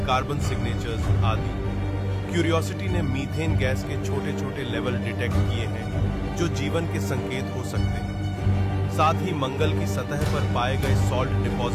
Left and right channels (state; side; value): identical; both; correlation 1.00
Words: कार्बन सिग्नेचर्स आदि। क्यूरियोसिटी ने मीथेन गैस के छोटे छोटे लेवल डिटेक्ट किए हैं, जो जीवन के संकेत हो सकते हैं। साथ ही मंगल की सतह पर पाए गए सॉल्ट